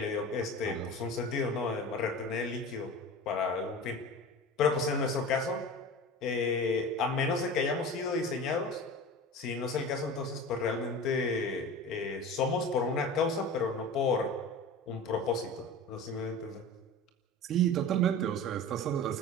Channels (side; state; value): both; normal; correlation 0.34